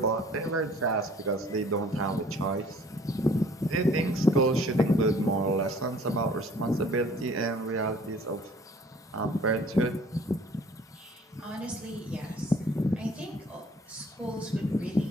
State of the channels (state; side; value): normal; both; correlation 0.54